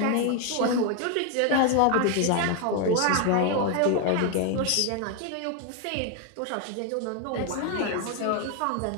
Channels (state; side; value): different; both; correlation 0.01